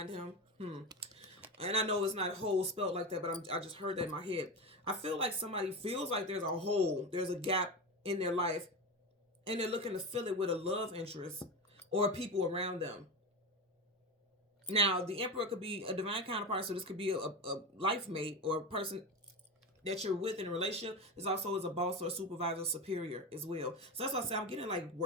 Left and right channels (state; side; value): normal; both; correlation 0.21